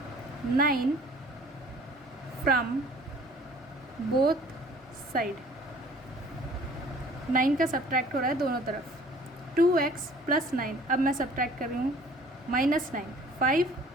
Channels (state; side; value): normal; both; correlation 0.52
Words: 9 फ्रॉम बोथ साइड। 9 का सब्ट्रैक्ट हो रहा है दोनों तरफ। 2x + 9, अब मैं सब्ट्रैक्ट कर रही हूँ -9। 5